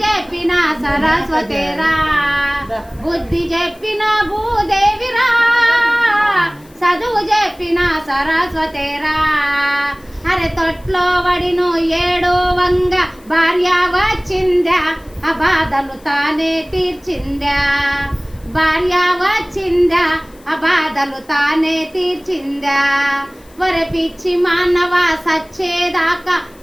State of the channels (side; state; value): left; noise; hiss, 28 dB below the sound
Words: చెప్పిన సరస్వతిరా. బుద్ధి చెప్పిన భూదేవిరా, చదువు చెప్పిన సరస్వతిరా. అరే తొట్లో వడిను ఏడో వంగ భార్య వచ్చిందా, ఆ బాధలు తానే తీర్చిందా. భార్య వచ్చిందా, ఆ బాధలు తానే తీర్చిందా. ఒరే పిచ్చి మానవ సచ్చేదాకా